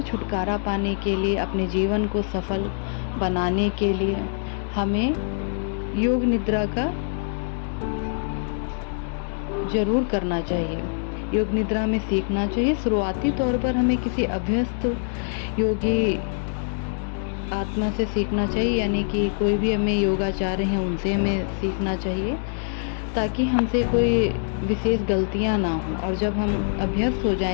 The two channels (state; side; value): silent; right; digital silence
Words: छुटकारा पाने के लिए, अपने जीवन को सफल बनाने के लिए, हमें योग निद्रा का जरूर करना चाहिए। योग निद्रा में सीखना चाहिए। शुरुआती तौर पर हमें किसी अभ्यस्त योगी आत्मा से सीखना चाहिए, यानी कि कोई भी हमें योगाचार्य हैं उनसे हमें सीखना चाहिए, ताकि हमसे कोई विशेष गलतियां ना हो। और जब हम अभ्यस्त हो